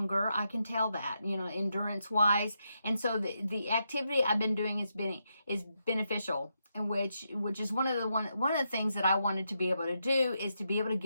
I can tell that, endurance wise. And so the activity I've been doing is beneficial, and which is one of the things that I wanted to be able to do, is to be able to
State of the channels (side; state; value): both; inverted; correlation -0.83